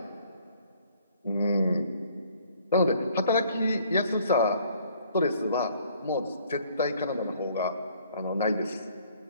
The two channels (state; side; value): inverted; both; correlation -0.61